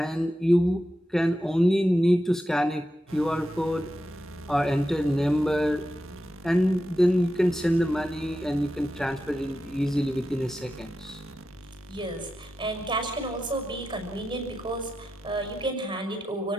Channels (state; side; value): normal; both; correlation 0.89